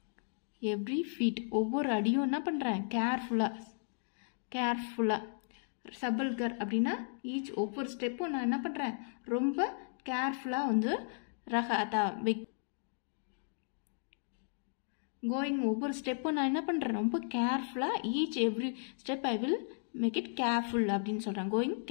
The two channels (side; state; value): right; silent; digital silence